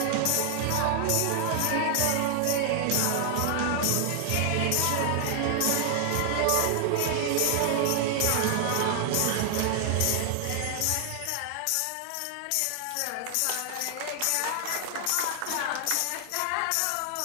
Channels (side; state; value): both; different; correlation 0.00